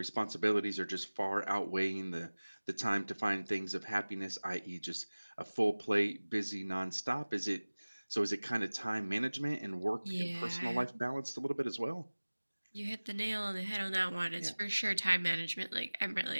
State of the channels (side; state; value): both; inverted; correlation -1.00